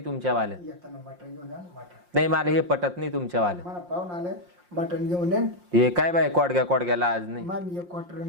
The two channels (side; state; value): left; late; 5.6 ms